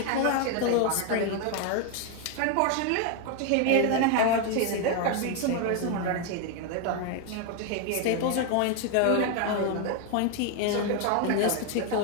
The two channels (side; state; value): both; different; correlation 0.01